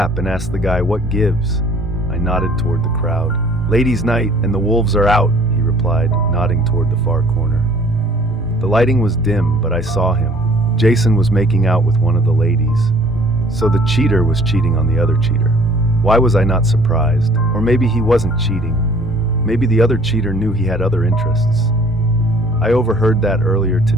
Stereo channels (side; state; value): both; normal; correlation 0.55